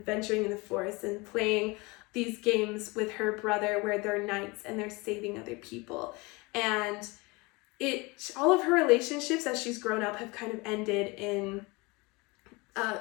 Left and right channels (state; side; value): quieter; right; 25.5 dB